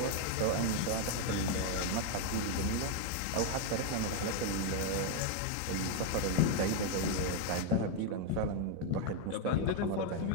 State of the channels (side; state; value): both; different; correlation 0.01